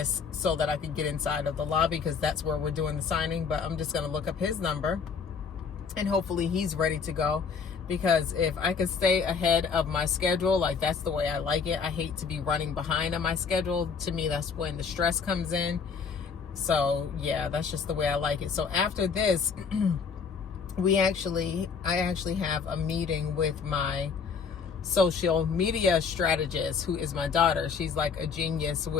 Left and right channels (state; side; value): quieter; right; 5.8 dB